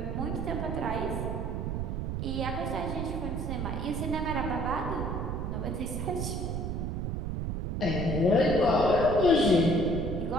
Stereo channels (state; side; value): noise; right; rumble, 2 dB below the sound